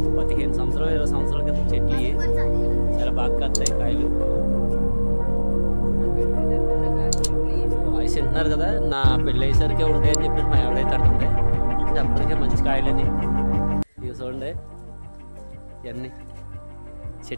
15 సంవత్సరాలు 20 సంవత్సరాల క్రితం చెట్లు చాలా బాగా వస్తాయి కాయలు. వాయిస్ వింటున్నారు కదా, నా పెళ్ళి అయ్యేసరికి ఉంటాయని చెప్పేసి మా ఎవడైతే అంటుంటే అప్పటికే మంచి కాయలని. ఇవి చూడండి ఇవన్నీ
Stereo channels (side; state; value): both; inverted; correlation -1.00